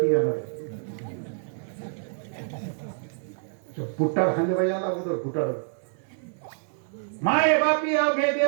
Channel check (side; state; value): left; silent; 60 dB below the other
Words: ती येणार. फुटाड खाल्ले पाहिजे अगोदर, फुटाड. माय बापी अवघे